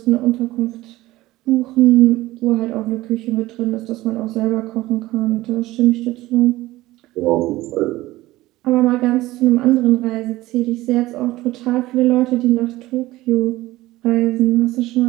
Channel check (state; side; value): quieter; left; 17.6 dB